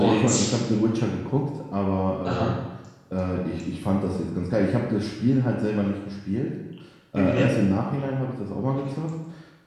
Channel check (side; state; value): both; identical; correlation 1.00